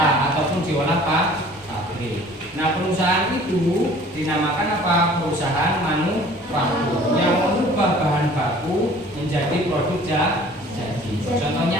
ataupun diolah pabrik. Nah, perusahaan itu dinamakan apa? Perusahaan manufaktur yang mengubah bahan baku menjadi produk jadi. Contohnya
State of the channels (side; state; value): both; normal; correlation 0.50